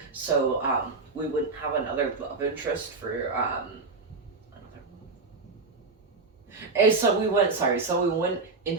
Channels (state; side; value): quieter; left; 4.0 dB